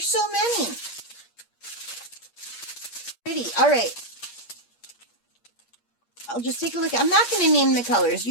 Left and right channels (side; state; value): right; late; 8.5 ms